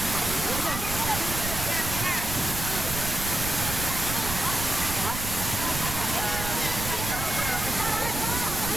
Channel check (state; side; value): noise; right; rumble, 6 dB below the sound